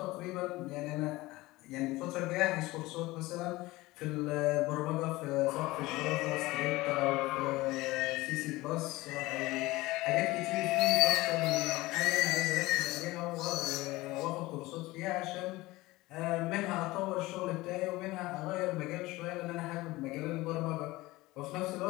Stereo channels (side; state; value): right; quieter; 19.7 dB